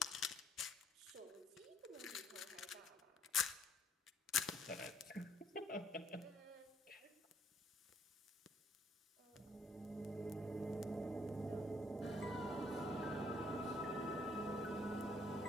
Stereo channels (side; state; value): both; normal; correlation 0.66